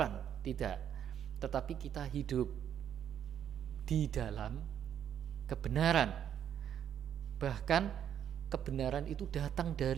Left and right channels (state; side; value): quieter; left; 9.4 dB